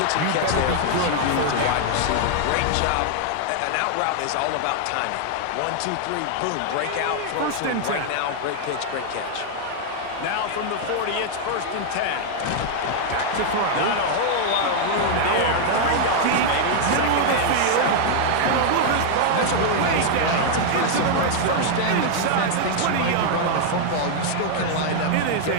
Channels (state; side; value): different; both; correlation 0.00